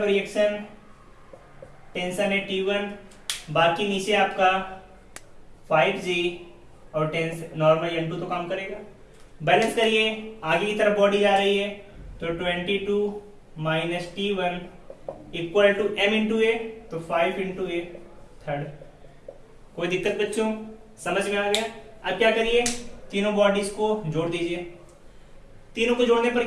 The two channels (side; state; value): both; identical; correlation 1.00